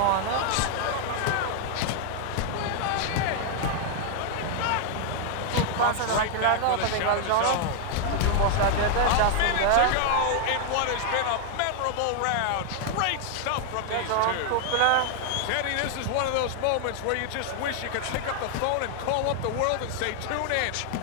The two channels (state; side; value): different; both; correlation 0.00